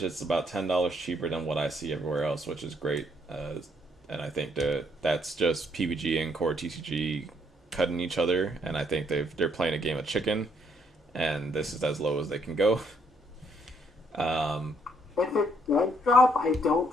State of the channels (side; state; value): both; normal; correlation 0.70